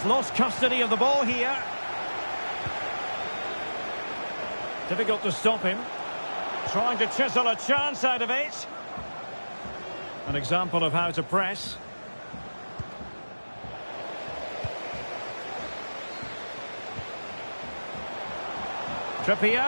lost custody of the ball here. Difficult to stop him. Trying to chisel a chance out of it. An example of how to press.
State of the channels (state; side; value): inverted; both; correlation -1.00